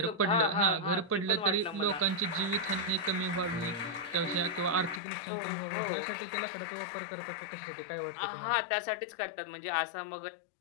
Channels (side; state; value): right; drops out; at 5.0 s